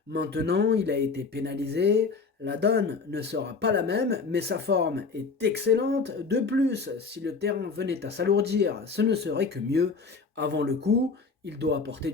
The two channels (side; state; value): right; quieter; 4.6 dB